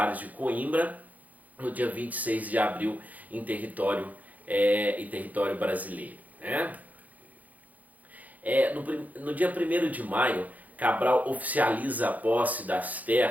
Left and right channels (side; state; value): left; late; 0.078 ms